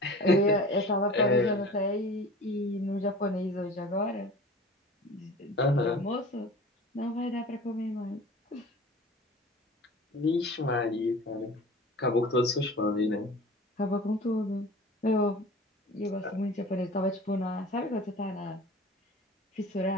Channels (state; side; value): normal; both; correlation 0.40